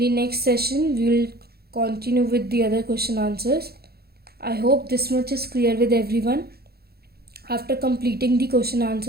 next session we will continue with the other question answers. I hope this much is clear with everyone. After completing the question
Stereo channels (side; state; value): left; late; 0.46 ms